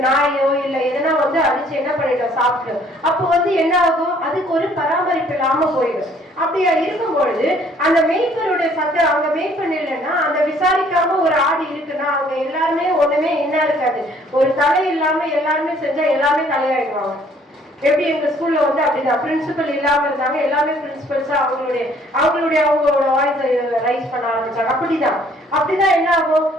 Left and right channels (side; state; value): both; normal; correlation 0.60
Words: நாயோ இல்ல எதனா அடிச்சு என்ன பண்ணிட்டோம் சாப்பிட்டோம். அப்போ என்ன ஆகும், அதுக்கு ஒரு பராமரிப்பு இல்லாம போயிடும். அப்படியா இருக்கும் பொழுது அந்த மேய்ப்பருடைய சத்தம், அவங்க மேய்ப்பன் இல்லைன்னா அந்த விசாரிக்காம ஒரு ஆடு இருக்குன்னா அவங்க எல்லாருமே ஒண்ணுமே என்ன இருக்காது, ஒரு தலை இல்லாம எல்லாருமே செஞ்சா எல்லாமே தலையாயிடுவாங்க. எப்படி எங்க ஸ்கூல்ல அப்படிதான் பிரின்சிபல் இல்லாம இருந்தாங்க, எல்லாமே பிரின்சிபல்ஸா அவங்களோட வாய்ஸ் ரைஸ் பண்ண ஆரம்பிச்சாங்க. அப்படிதான் என்ன ஆகும்,